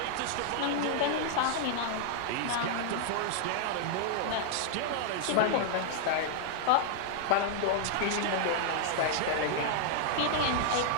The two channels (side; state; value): both; different; correlation -0.01